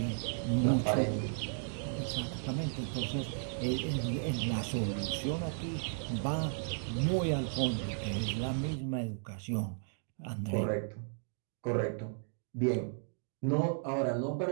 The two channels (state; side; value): silent; left; digital silence